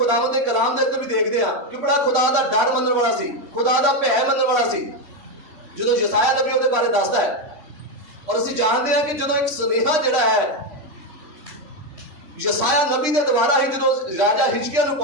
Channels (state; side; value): late; left; 3.1 ms